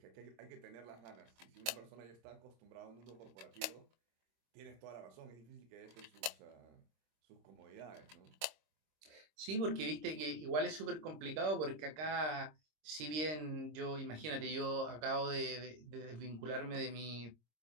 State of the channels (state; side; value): late; left; 26 ms